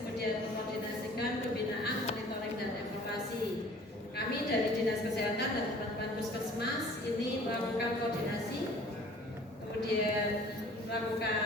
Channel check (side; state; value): both; normal; correlation 0.50